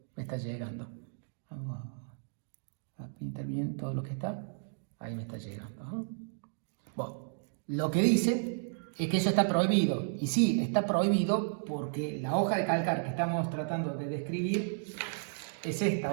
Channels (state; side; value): silent; left; digital silence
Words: Vamos a pintar bien todo lo que está. Ahí me está llegando. Bueno, Lo que dice es que eso está prohibido. Y sí, está prohibido porque la hoja de calcar que estamos tratando de describir es